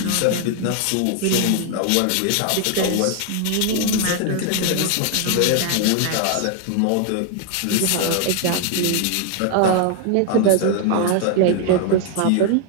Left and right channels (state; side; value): different; both; correlation 0.00